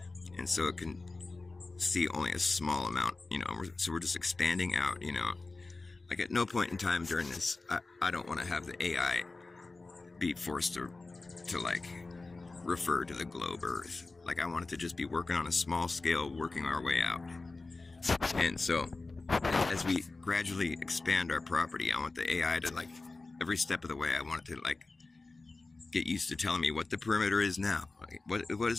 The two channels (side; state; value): right; quieter; 3.5 dB